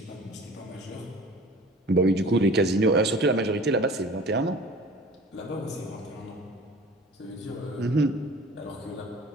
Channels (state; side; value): normal; both; correlation 0.44